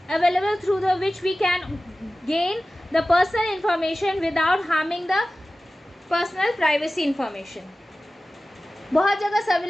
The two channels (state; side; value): normal; both; correlation 0.96